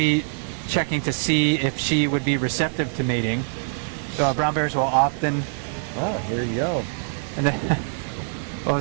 checking to see if she would be receptive to mating. Brown bears will often... Oh, here you go. And then, well,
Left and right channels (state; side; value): silent; left; digital silence